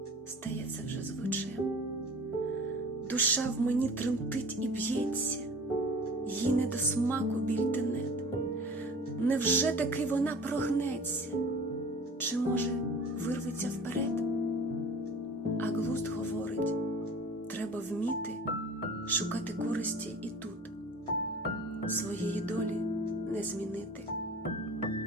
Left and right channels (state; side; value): normal; both; correlation 0.42